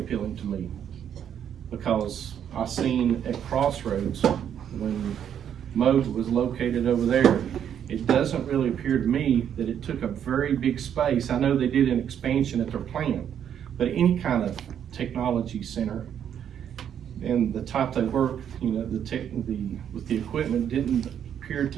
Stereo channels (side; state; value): left; quieter; 9.1 dB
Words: to me because I seen at Crossroads when Mode was located over there, it doesn't really appear to me that it took a very big space. I know they did an expansion at their plant, but any kind of technology center and the type they work, you know, with the equipment didn't appear